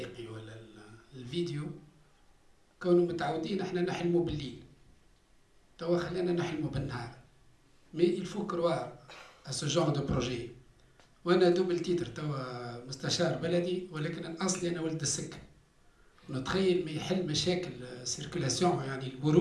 ولا الفيديو، كونوا متعودين احنا نحلموا بالليل، توا خلينا نحلموا بالنهار. مي il faut croire à ce genre de projet. وانا دوبل تيتر توا مستشار بلدي، ولكن اصلي انا ولد السكه. نتخيل ما يحل مشاكل سيركولاسيون يعني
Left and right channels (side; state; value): both; identical; correlation 1.00